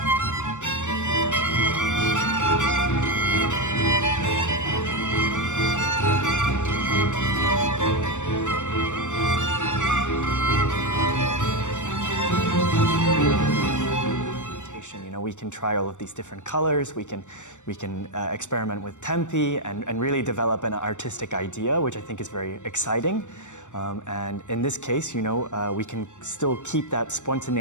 We can try all of these different colors, we can experiment with tempi and really develop an artistic idea, which I think is very exciting. And in this case, you know, we can still keep that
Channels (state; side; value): late; right; 0.85 ms